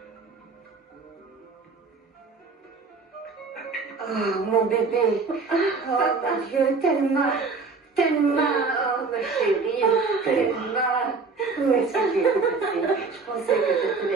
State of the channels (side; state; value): left; quieter; 4.4 dB